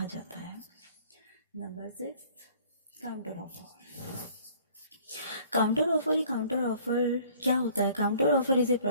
जाता है। Number 6, counter offer. Counter offer क्या होता है? Counter offer is a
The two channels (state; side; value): inverted; both; correlation -0.54